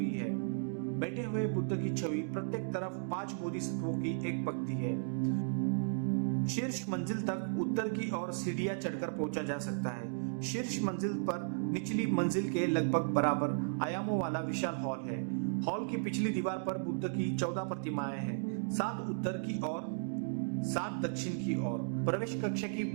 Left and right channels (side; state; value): left; silent; digital silence